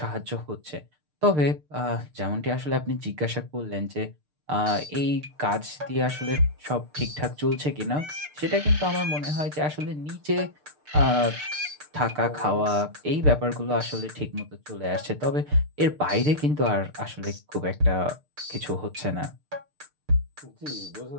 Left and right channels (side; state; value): left; late; 6.7 ms